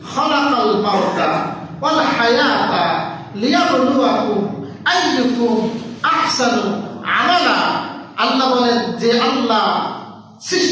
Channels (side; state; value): both; identical; correlation 1.00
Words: খালাকাল মাউতা ওয়াল হায়াতা লিয়াবলুয়াকুম আইয়ুকুম আহসানু আমালা। আল্লাহ বলেন যে আল্লাহ